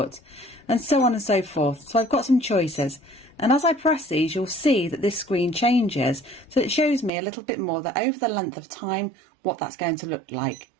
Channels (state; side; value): drops out; left; at 7.1 s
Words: and so on and so forth. So I've got some choices, and as I press these, you'll see that this screen changes, so it shows me a little bit more that over the length of time what that's going to look like.